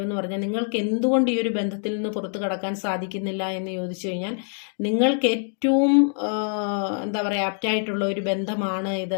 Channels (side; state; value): right; silent; 60 dB below the other